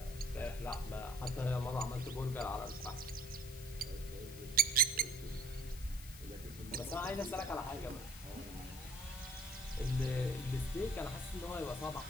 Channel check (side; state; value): left; noise; hiss, 15 dB below the sound